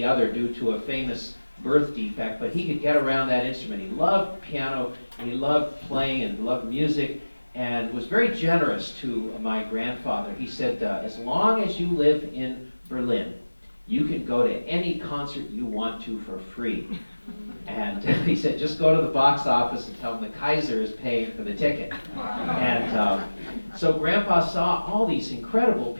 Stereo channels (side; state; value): both; inverted; correlation -1.00